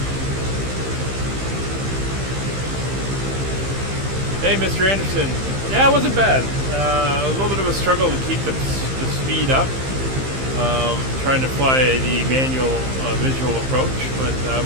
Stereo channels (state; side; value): late; left; 15 ms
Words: Hey, Mr. Anderson. Yeah, it wasn't bad. A little bit of a struggle to keep the speed up. Trying to fly the manual visual approach, but